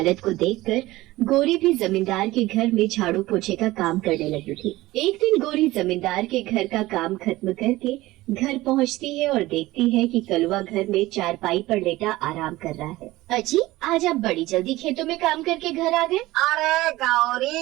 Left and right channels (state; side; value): quieter; left; 18.2 dB